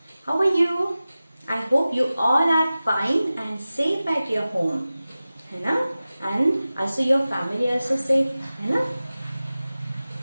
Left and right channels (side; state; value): both; inverted; correlation -0.96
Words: How are you? I hope you all are fine and safe at your home, है ना? And also your family also safe, है ना?